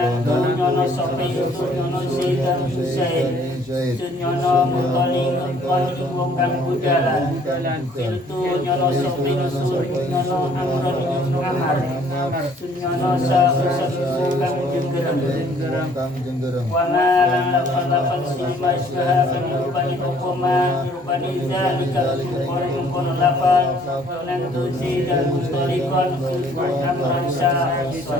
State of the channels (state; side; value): normal; both; correlation 0.59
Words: nyono sapa itu nyono si dan Zaid nyono muntalikon ing wong kang budalan khiltu nyono sapa nusul nyono amron ing amar sunyono syafison kang jenggereng wana lafal silma isyaha penirupani hukuma nirupani zalika kono lafal donan tusi dan mustalikon amron